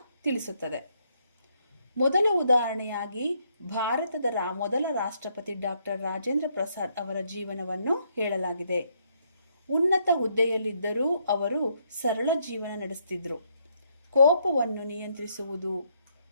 ತಿಳಿಸುತ್ತದೆ. ಮೊದಲ ಉದಾಹರಣೆಯಾಗಿ ಭಾರತದ ಮೊದಲ ರಾಷ್ಟ್ರಪತಿ ಡಾಕ್ಟರ್ ರಾಜೇಂದ್ರ ಪ್ರಸಾದ್ ಅವರ ಜೀವನವನ್ನು ಹೇಳಲಾಗಿದೆ. ಉನ್ನತ ಹುದ್ದೆಯಲ್ಲಿದ್ದರೂ ಅವರು ಸರಳ ಜೀವನ ನಡೆಸುತ್ತಿದ್ದರು. ಕೋಪವನ್ನು ನಿಯಂತ್ರಿಸುವುದು,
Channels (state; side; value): inverted; both; correlation -0.74